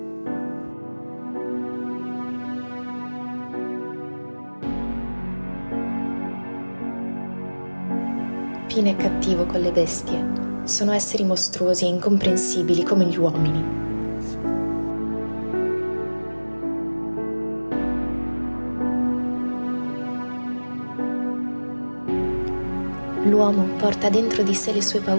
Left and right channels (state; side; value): inverted; both; correlation -1.00